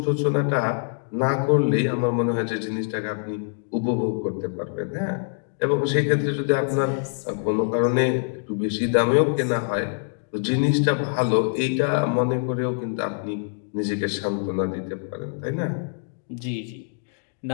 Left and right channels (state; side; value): silent; right; 62 dB below the other